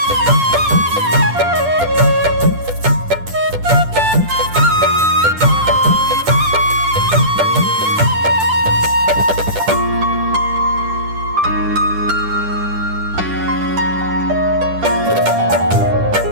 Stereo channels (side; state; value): left; late; 10 ms